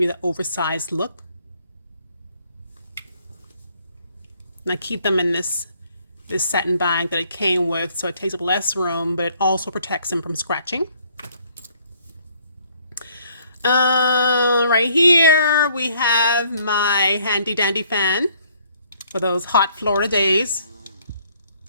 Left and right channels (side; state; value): both; inverted; correlation -0.64